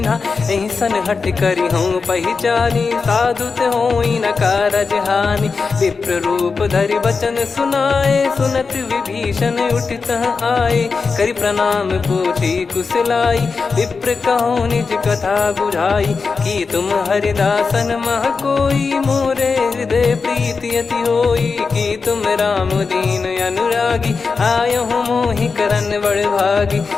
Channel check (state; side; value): quieter; right; 4.8 dB